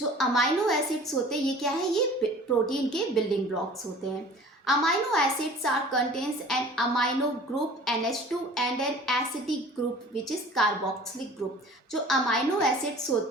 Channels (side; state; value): both; normal; correlation 0.46